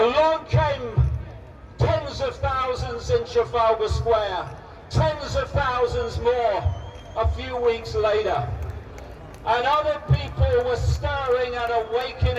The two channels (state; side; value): identical; both; correlation 1.00